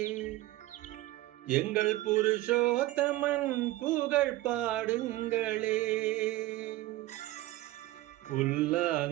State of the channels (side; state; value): left; quieter; 17.1 dB